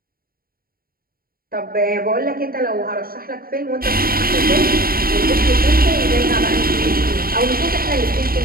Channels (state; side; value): late; left; 0.43 ms